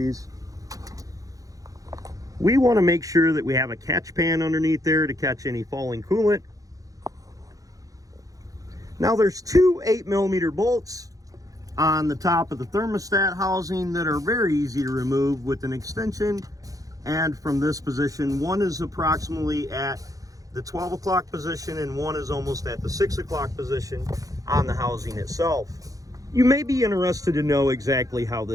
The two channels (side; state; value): left; late; 0.17 ms